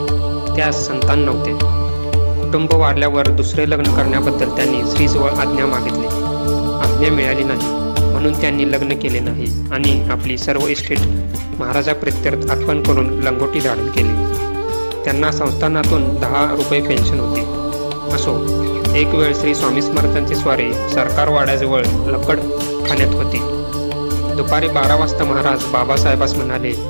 त्यास संतान नव्हते. कुटुंब वाढल्यावर दुसरे लग्न करण्याबद्दल त्यांनी श्रीजवळ आज्ञा मागितली. आज्ञा मिळाली नाही, म्हणून त्यांनी लग्न केले नाही आणि आपली सर्व इस्टेट महाराजाप्रित्यर्थ अर्पण करून लंगोटी धारण केली. त्यांना संस्थानातून 10 रुपये पेन्शन होती. असो, एक वेळ श्री स्वामी समर्थांची स्वारी सरकारवाड्याजवळ लकड खाण्यात होती. दुपारी 12 वाजता महाराज बाबासाहेबास म्हणाले,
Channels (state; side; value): inverted; both; correlation -1.00